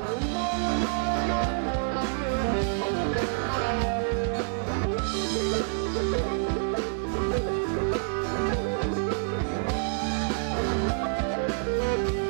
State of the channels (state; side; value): silent; left; digital silence